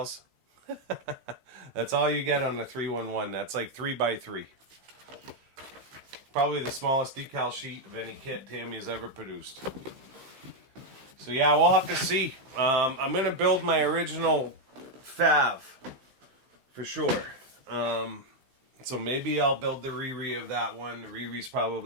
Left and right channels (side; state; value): left; late; 15 ms